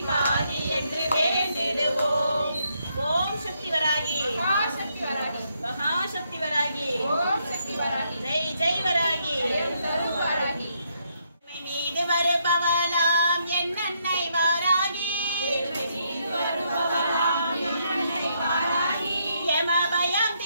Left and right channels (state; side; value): inverted; both; correlation -0.76